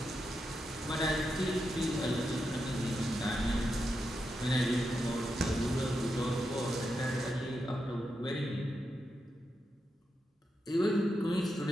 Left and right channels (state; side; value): normal; both; correlation 0.86